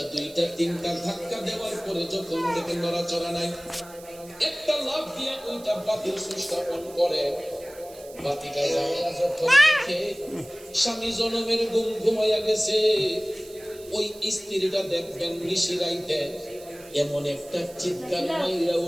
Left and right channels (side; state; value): right; noise; hiss, 20 dB below the sound